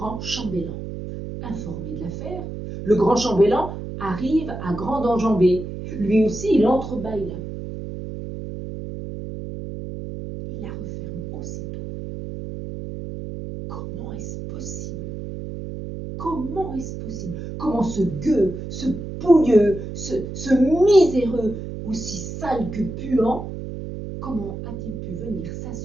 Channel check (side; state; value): right; noise; hum, 8 dB below the sound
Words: chambellan. Informé de l'affaire, le grand chambellan arrive à grande enjambée. Lui aussi, il entrebâille la porte. Il la referme aussitôt. Comment est-ce possible? Comment est-ce possible? Comment ce gueux, ce pouilleux, ce miséreux, aussi sale que puant, comment a-t-il pu venir